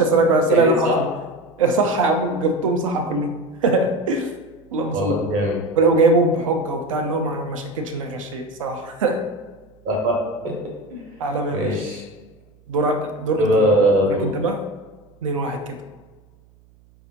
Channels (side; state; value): right; noise; hum, 30 dB below the sound